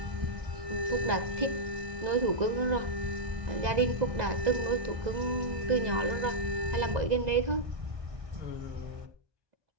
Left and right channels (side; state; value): left; late; 2.0 ms